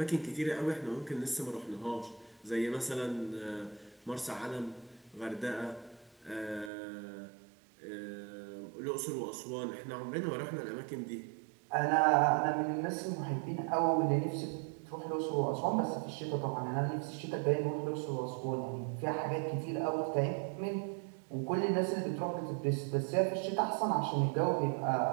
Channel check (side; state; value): left; drops out; at 6.7 s